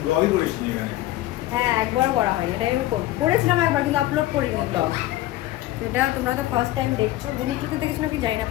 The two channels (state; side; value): quieter; right; 15.8 dB